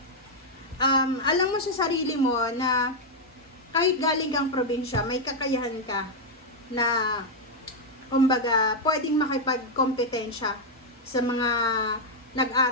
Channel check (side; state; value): both; normal; correlation -0.01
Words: Alam mo sa sarili mo na kahit galing kang probinsya, may kakayahan ka na kumbaga pwedeng makipagkompetensya sa mga